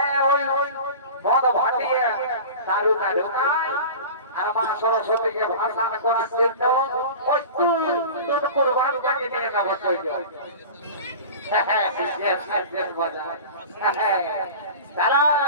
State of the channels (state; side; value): inverted; both; correlation -0.35